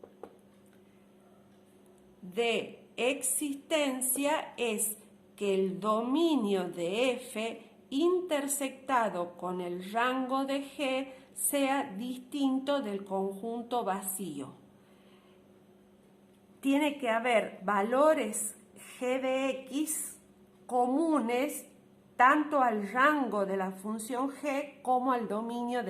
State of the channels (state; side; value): identical; both; correlation 1.00